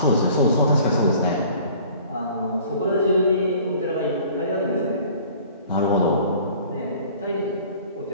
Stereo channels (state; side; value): inverted; both; correlation -0.50